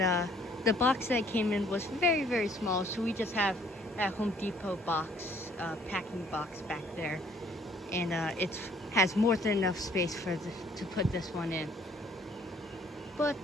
the box that came in was very, very small, so we just have that Home Depot box, packing box back there, and it has more than enough space to put this one in. But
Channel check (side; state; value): both; normal; correlation 0.61